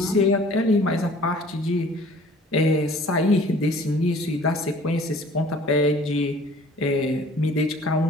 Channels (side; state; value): both; normal; correlation 0.51